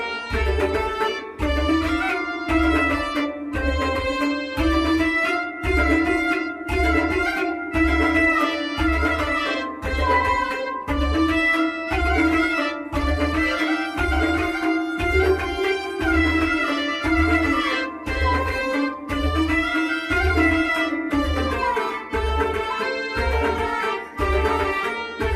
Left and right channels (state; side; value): identical; both; correlation 1.00